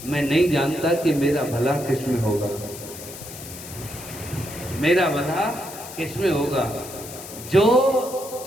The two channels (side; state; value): left; noise; hiss, 13 dB below the sound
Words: मैं नहीं जानता कि मेरा भला किसमें होगा, मेरा भला किसमें होगा। जो